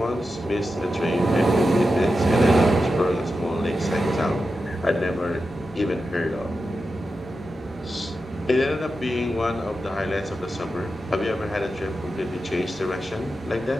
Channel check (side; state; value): both; normal; correlation 0.90